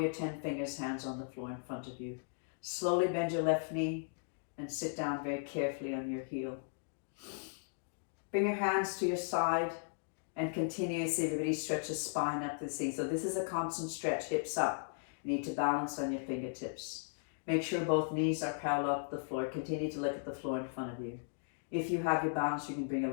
your 10 fingers, hands on the floor in front of you. Slowly bend your left knee and sit down very carefully on your heel. Bring your hands to your side and continuously, everybody, stretch the spine up the seat. So this is a constant stretch, hips up. You need to balance on your fingertips. Make sure both knees are parallel to the floor. Continue to look at the floor in front of you. If you have your balance, you can bring your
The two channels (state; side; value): silent; right; digital silence